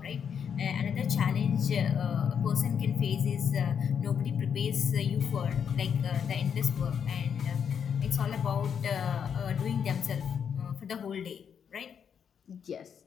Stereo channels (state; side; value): quieter; right; 7.5 dB